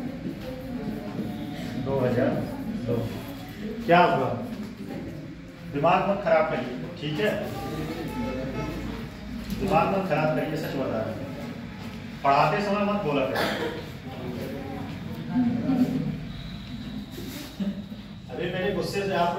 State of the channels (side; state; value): both; identical; correlation 1.00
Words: 2002। क्या हुआ? दिमाग मत खराब करिए, ठीक है? दिमाग मत खराब करिए, सच बता रहे हैं। पढ़ाते समय मत बोला करिए। अभी मेरे गुस्से से आप